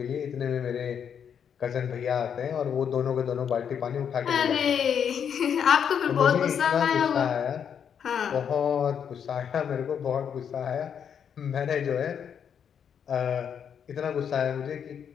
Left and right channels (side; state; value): right; quieter; 7.9 dB